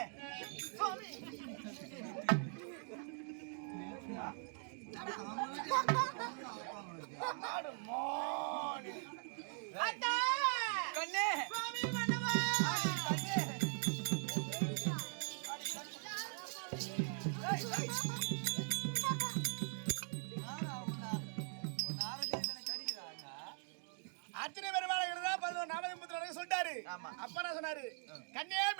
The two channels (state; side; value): silent; left; 50 dB below the other